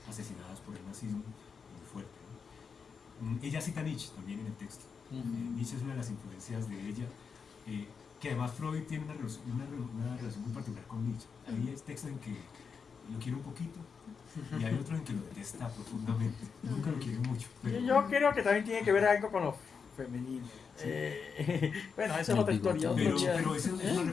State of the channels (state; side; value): quieter; right; 5.8 dB